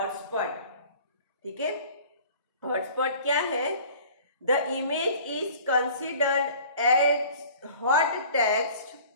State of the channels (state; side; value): inverted; both; correlation -0.47